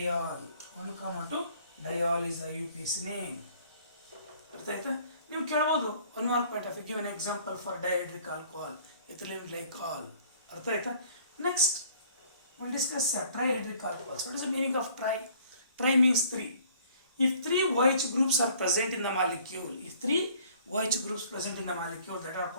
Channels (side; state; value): both; inverted; correlation -0.56